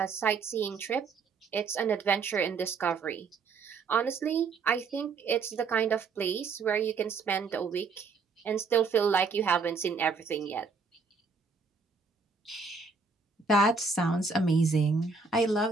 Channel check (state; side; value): quieter; left; 4.6 dB